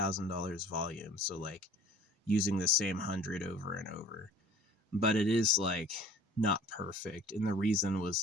volume. So like using the same 100 over and over, but it is like not perfect. And the reason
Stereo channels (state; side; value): normal; both; correlation 0.47